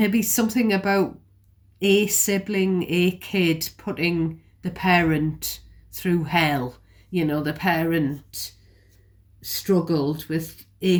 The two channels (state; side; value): identical; both; correlation 1.00